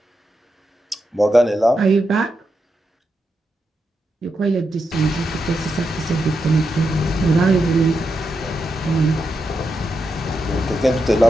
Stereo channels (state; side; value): normal; both; correlation 0.85